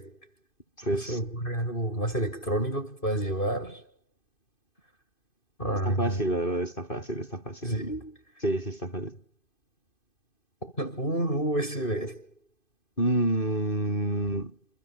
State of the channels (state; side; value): late; right; 2.5 ms